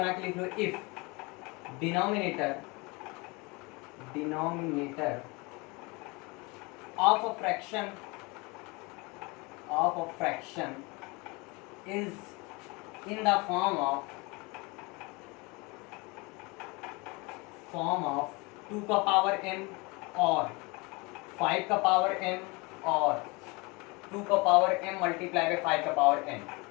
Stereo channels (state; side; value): quieter; right; 26.7 dB